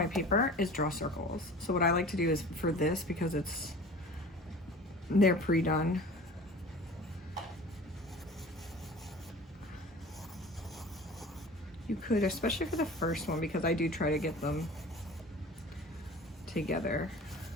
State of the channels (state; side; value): normal; both; correlation 0.41